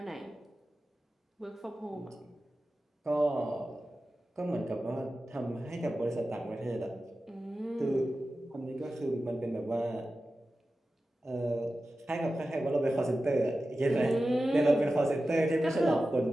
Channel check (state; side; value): normal; both; correlation 0.94